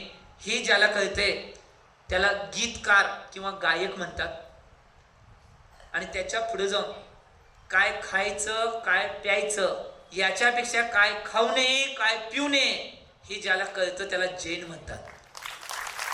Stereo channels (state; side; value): identical; both; correlation 1.00